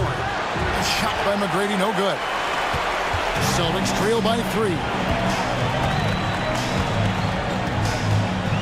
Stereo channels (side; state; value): both; identical; correlation 1.00